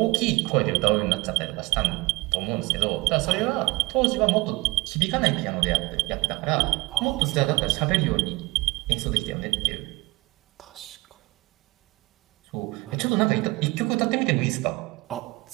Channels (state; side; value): quieter; left; 22.6 dB